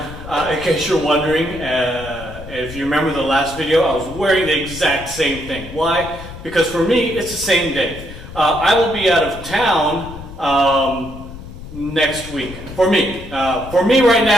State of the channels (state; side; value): noise; left; rumble, 13 dB below the sound